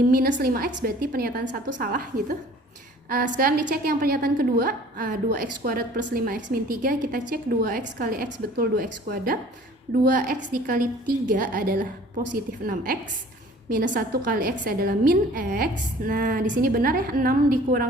5x berarti pernyataan 1 salah gitu. Sekarang dicek yang pernyataan kedua, 2x kuadrat plus 5x min 3, kita cek 2x kali x betul 2x kuadrat. 2x dikali 3 adalah positif 6x. Minus 1 kali x adalah min x. Nah, di sini benar ya, 6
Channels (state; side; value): normal; both; correlation 0.50